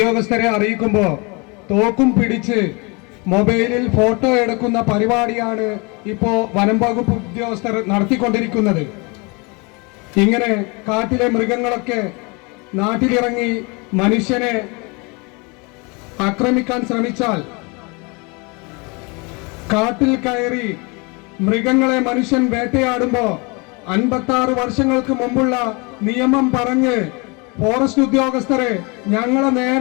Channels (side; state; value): right; quieter; 29.5 dB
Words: അറിയിക്കുമ്പോൾ തോക്കും പിടിച്ച് മൊബൈലിൽ ഫോട്ടോ എടുക്കുന്ന പരിപാടിയാണ് ഇപ്പോൾ വനം വകുപ്പ് ഉദ്യോഗസ്ഥർ നടത്തിക്കൊണ്ടിരിക്കുന്നത്. ഇങ്ങനെ കാട്ടിലെ മൃഗങ്ങളൊക്കെ നാട്ടിലിറങ്ങി മനുഷ്യനെ ആക്രമിക്കാൻ ശ്രമിച്ചാൽ, കാട്ടിൽ കയറി മൃഗങ്ങളെ മനുഷ്യൻ വേട്ടയാടുമ്പോ 56 വർഷങ്ങൾക്ക് മുമ്പുള്ള നിയമം പറഞ്ഞ് ഫോറസ്റ്റ് ഉദ്യോഗസ്ഥരെ ഞങ്ങളെ